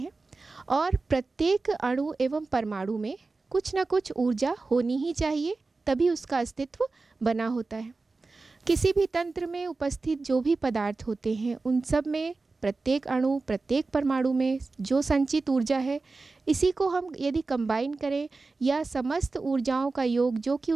और प्रत्येक अणु एवं परमाणु में कुछ न कुछ ऊर्जा होनी ही चाहिए, तभी उसका अस्तित्व बना होता है। किसी भी तंत्र में उपस्थित जो भी पदार्थ होते हैं उन सब में प्रत्येक अणु, प्रत्येक परमाणु में जो संचित ऊर्जा है, इसी को हम यदि कंबाइन करें या समस्त ऊर्जाओं का योग जो कि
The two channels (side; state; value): left; quieter; 3.8 dB